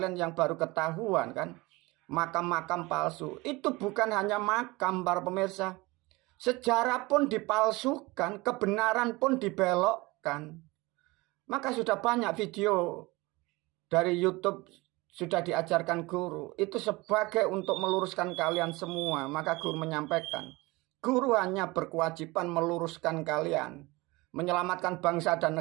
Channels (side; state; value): left; quieter; 22.7 dB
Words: yang baru ketahuan kan, makam-makam palsu. Itu bukan hanya makam para pemirsa. Sejarah pun dipalsukan, kebenaran pun dibelokkan. Maka sudah banyak video dari YouTube sudah diajarkan guru. Itu sebagai untuk meluruskan kalian semua. Maka guru menyampaikan, guru hanya berkewajiban meluruskan kalian, menyelamatkan bangsa dan